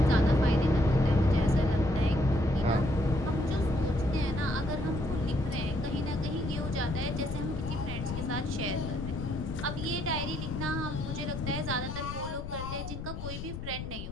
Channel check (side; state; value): left; noise; rumble, 8 dB below the sound